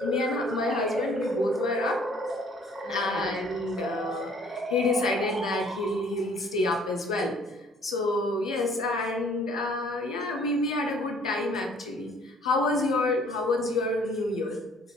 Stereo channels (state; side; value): normal; both; correlation 0.57